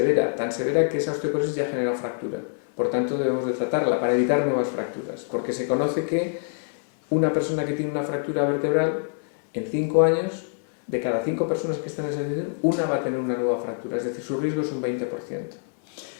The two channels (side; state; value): right; silent; 60 dB below the other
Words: tan severa que esa osteoporosis ya genera fractura. Por tanto, debemos de tratarla para evitar nuevas fracturas, porque se conoce que una persona que tiene una fractura vertebral, en 5 años, de cada 5 personas que están en esa situación, una va a tener una nueva fractura, es decir, su riesgo es un 20%.